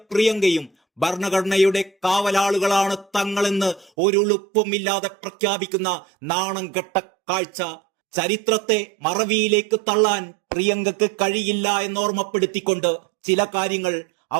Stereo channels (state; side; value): drops out; left; at 3.9 s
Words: പ്രിയങ്കയും ഭരണഘടനയുടെ കാവലാളുകളാണ് തങ്ങളെന്ന് ഒരുളുപ്പുമില്ലാതെ പ്രഖ്യാപിക്കുന്ന നാണം കെട്ട കാഴ്ച. ചരിത്രത്തെ മറവിയിലേക്ക് തള്ളാൻ പ്രിയങ്കക്ക് കഴിയില്ല എന്നോർമ്മപ്പെടുത്തിക്കൊണ്ട് ചില കാര്യങ്ങൾ